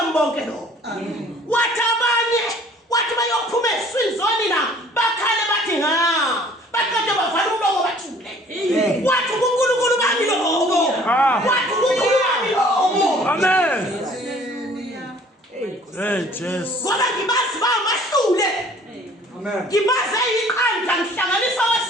lo. Wathi abanye wathi bayophuma eziswini zonina bakhale bathi baqede bavala umlomo bathule. Wathi uNkulunkulu bami lobo. Wathi uNkulunkulu bami lobo. Amen. Hey, Jesus. Ngoba ngibazi bamahlule. Amen. Ngibaze iqanda ngihlanganisa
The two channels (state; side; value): normal; both; correlation 0.54